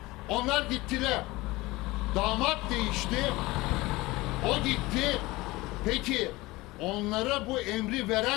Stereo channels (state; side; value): quieter; right; 20.7 dB